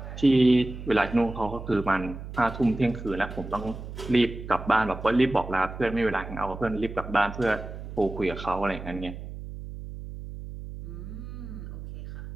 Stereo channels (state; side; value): noise; right; hum, 10 dB below the sound